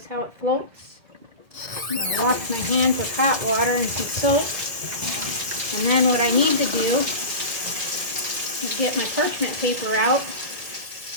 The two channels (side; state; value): left; late; 2.1 ms